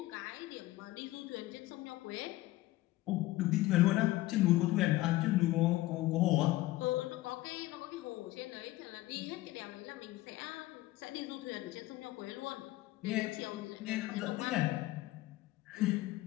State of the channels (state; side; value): quieter; right; 17.4 dB